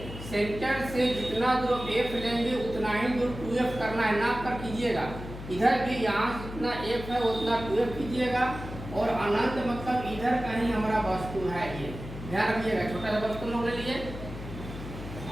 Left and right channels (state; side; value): noise; left; hum, 11 dB below the sound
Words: सेंटर से जितना दूर F लेंगे उतना ही दूर 2F करना है, नाप कर कीजिएगा। इधर भी यहाँ जितना F है उतना 2F कीजिएगा और अनंत मतलब इधर कहीं हमारा वस्तु है, ये ध्यान रखिएगा। छोटा सा वस्तु लोग ले लिए